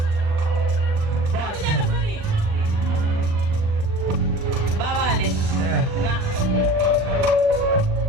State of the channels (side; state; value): left; late; 39 ms